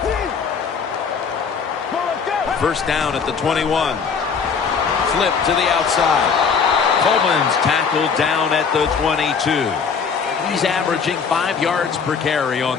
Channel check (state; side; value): quieter; right; 5.9 dB